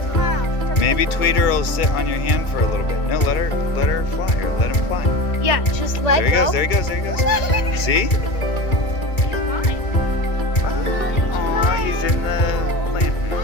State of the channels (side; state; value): right; late; 2.3 ms